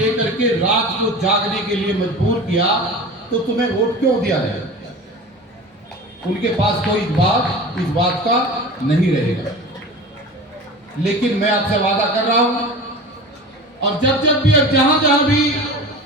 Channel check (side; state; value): both; normal; correlation 0.34